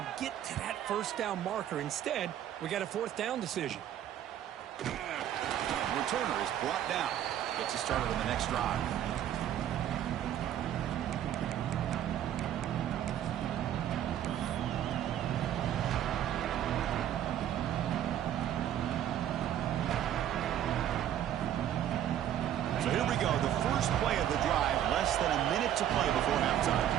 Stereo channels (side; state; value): left; quieter; 10.9 dB